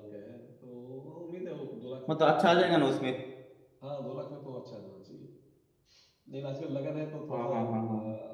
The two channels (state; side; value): identical; both; correlation 1.00